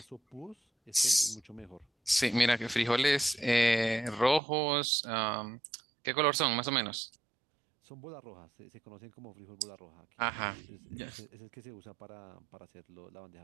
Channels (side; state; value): left; drops out; at 4.4 s